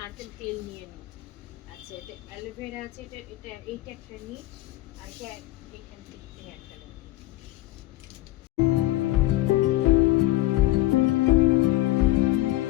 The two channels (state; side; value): quieter; right; 17.0 dB